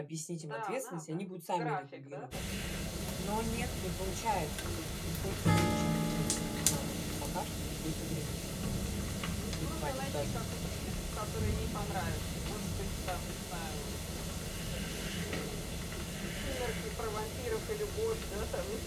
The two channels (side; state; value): both; identical; correlation 1.00